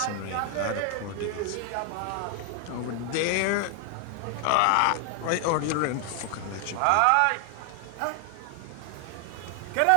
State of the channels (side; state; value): both; different; correlation 0.00